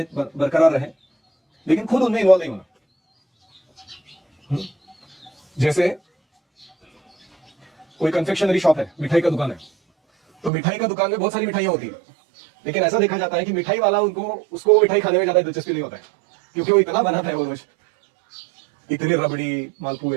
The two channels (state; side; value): drops out; left; at 10.5 s